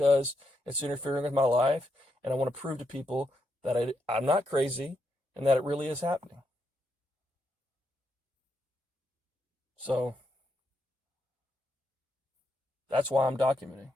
it's interfering with my life, and I want to prove to people that I'm not crazy and that it really is happening. So that's why I'm documenting,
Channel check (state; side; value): normal; both; correlation 0.81